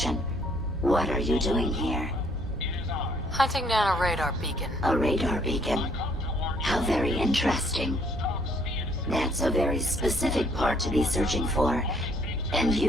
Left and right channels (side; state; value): both; normal; correlation 0.64